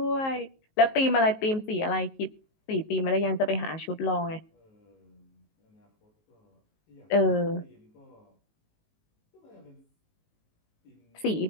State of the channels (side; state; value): right; late; 19 ms